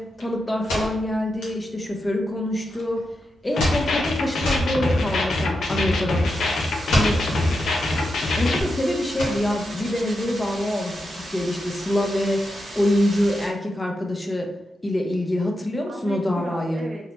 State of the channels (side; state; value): both; normal; correlation 0.87